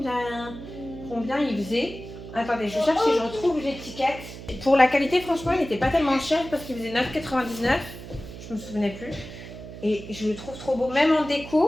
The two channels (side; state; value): right; noise; hum, 13 dB below the sound